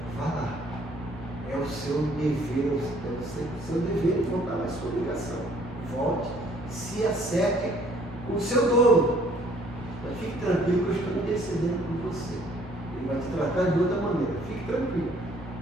vá lá, é o seu dever, é o seu dever de voltar à sua obrigação. Volte, se acerte com o seu dono, mas fique tranquilo que eu estou intercedendo por você. Ele vai te tratar de outra maneira, fique tranquilo.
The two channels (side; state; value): both; normal; correlation 0.60